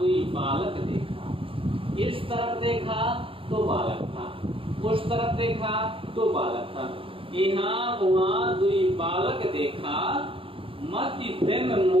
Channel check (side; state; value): left; late; 0.26 ms